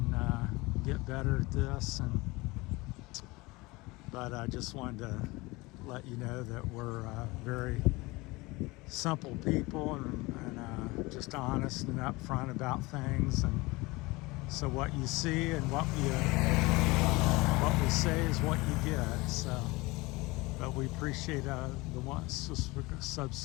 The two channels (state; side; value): quieter; right; 22.8 dB